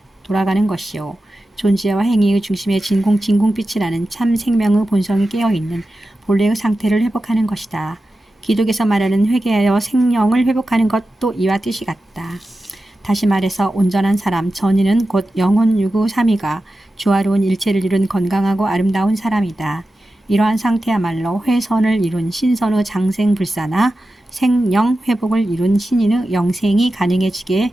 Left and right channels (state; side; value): normal; both; correlation 0.93